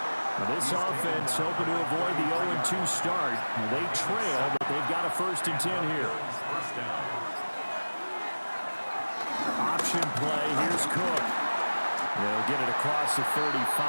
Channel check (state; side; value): inverted; both; correlation -1.00